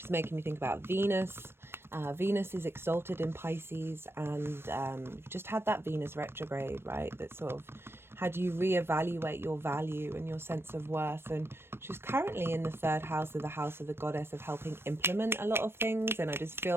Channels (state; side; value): late; left; 0.12 ms